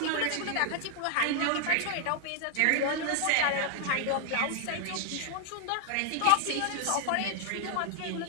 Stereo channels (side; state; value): both; different; correlation 0.00